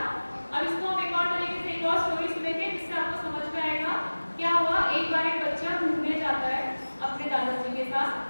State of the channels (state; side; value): inverted; both; correlation -1.00